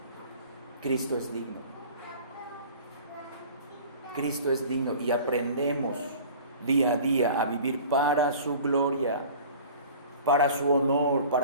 Cristo es digno. Cristo es digno y aprendemos día a día a vivir para su gloria, para su honor,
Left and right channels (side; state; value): both; inverted; correlation -0.44